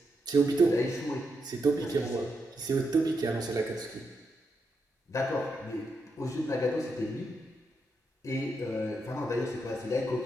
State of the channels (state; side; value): normal; both; correlation 0.83